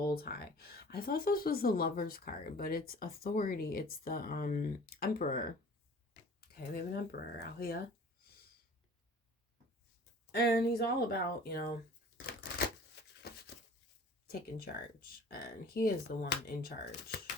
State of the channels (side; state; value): both; normal; correlation 0.46